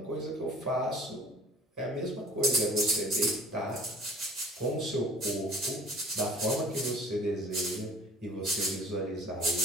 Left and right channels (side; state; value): both; normal; correlation 0.50